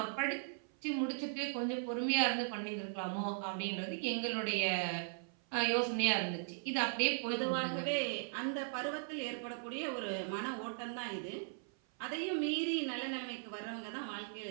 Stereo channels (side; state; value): left; silent; 52 dB below the other